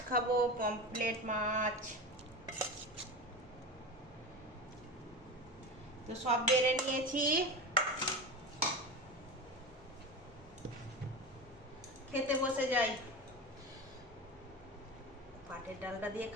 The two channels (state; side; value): normal; both; correlation 0.26